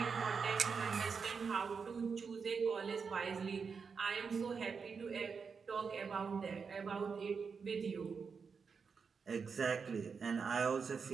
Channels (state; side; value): quieter; left; 5.6 dB